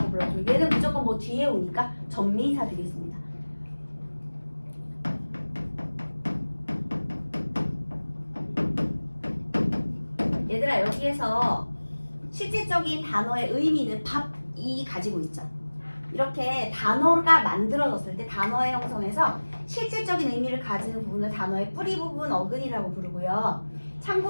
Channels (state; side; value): inverted; both; correlation -1.00